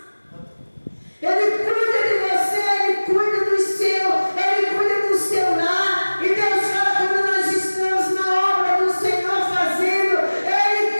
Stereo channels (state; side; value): inverted; both; correlation -1.00